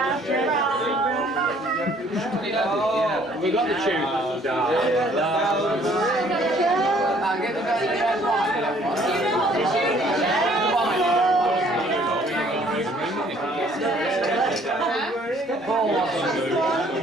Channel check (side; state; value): both; normal; correlation 0.60